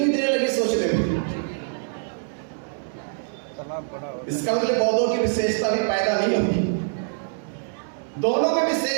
देर लगी सोचने में। इसका मतलब बौद्धों की विशेषता भी पैदा नहीं होगी। दोनों में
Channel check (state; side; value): silent; left; 62 dB below the other